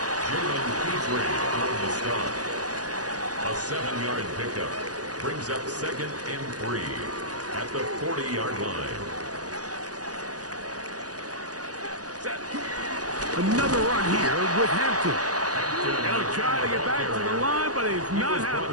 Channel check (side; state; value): left; late; 0.68 ms